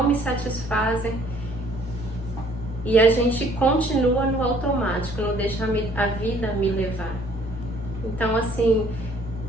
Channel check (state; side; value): normal; both; correlation 0.59